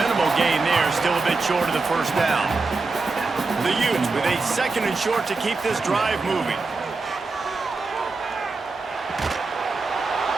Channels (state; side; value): quieter; left; 3.9 dB